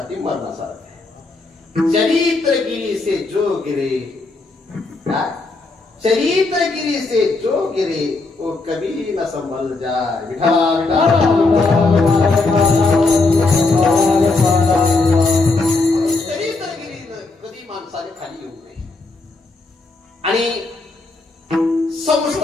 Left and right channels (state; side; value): quieter; right; 3.5 dB